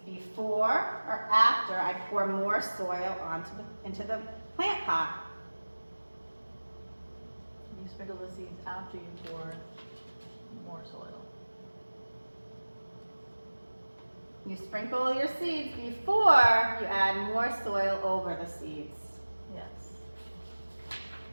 before or after I pour more soil into the plant pot? You sprinkle the seeds after you pour more soil. You sprinkle your seeds before you add more soil over the seeds. Yes.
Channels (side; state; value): both; inverted; correlation -1.00